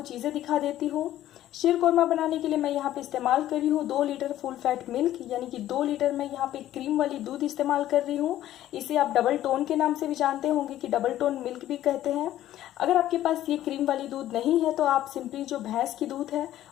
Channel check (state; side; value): quieter; right; 13.1 dB